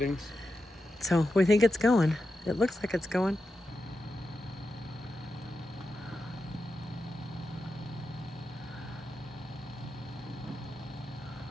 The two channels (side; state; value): both; normal; correlation 0.89